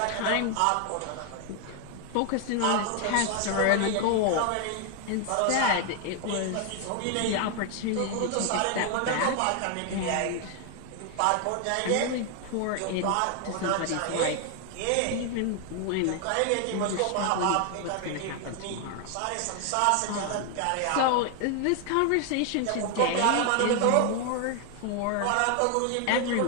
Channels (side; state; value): both; different; correlation 0.00